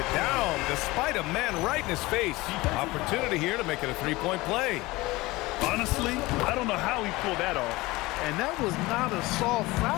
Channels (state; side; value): quieter; right; 20.8 dB